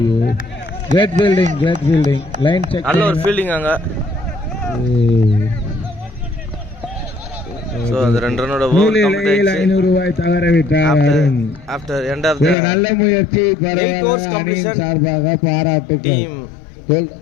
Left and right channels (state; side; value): drops out; right; at 12.6 s